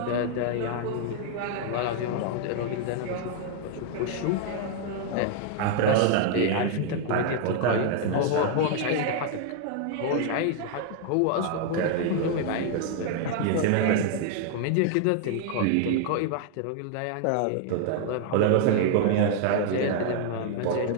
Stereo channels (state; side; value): different; both; correlation 0.00